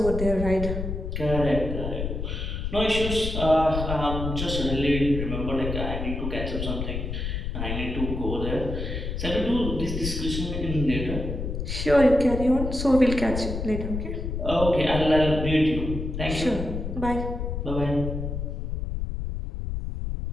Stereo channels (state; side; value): noise; left; rumble, 4 dB below the sound